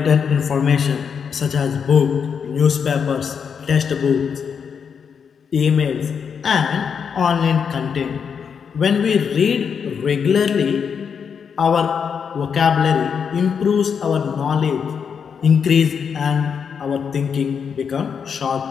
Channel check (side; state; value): right; quieter; 6.7 dB